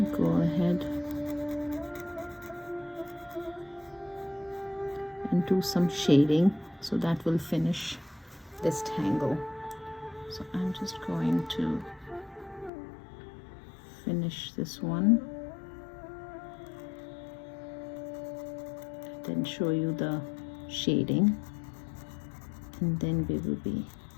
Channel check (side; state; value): right; drops out; at 12.7 s